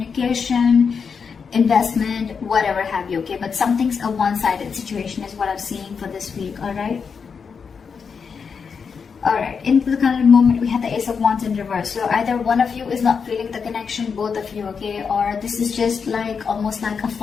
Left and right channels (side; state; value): right; quieter; 5.9 dB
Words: investment, whatever have you, okay? But something's a one-sided situation is what I'm seeing for this week, all right? All right, into the current moment, we have the Ace of Wands in reverse. So either one of you is not feeling the connection, both of you, okay? Or this is just like almost like a